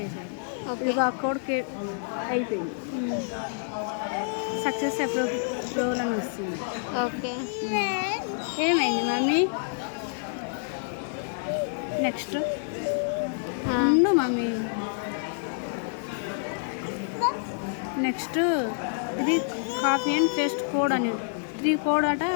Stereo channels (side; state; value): right; silent; digital silence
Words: ఇక ఆ కోడ్ అయిపోయింది. సక్సెస్ అప్రూవల్ అని వస్తుంది. ఓకే, ఏమైంది మమ్మీ? నెక్స్ట్ ఉండు మమ్మీ. నెక్స్ట్ ఇది కాపీ అండ్ పేస్ట్ కోడ్ అని 3 కోడ్ అట